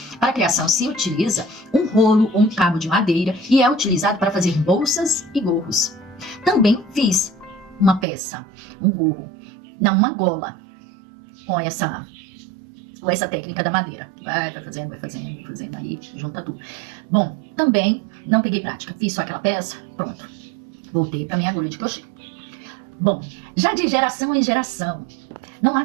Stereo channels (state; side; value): drops out; left; at 8.1 s